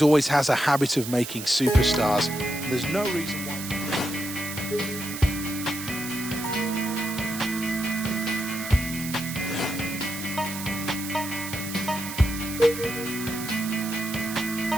always has a habit of making superstars, and there's no reason why...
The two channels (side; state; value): right; noise; hiss, 9 dB below the sound